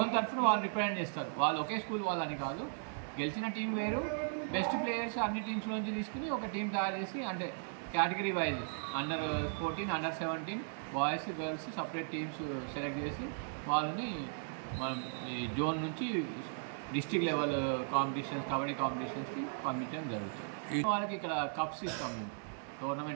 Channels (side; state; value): left; silent; digital silence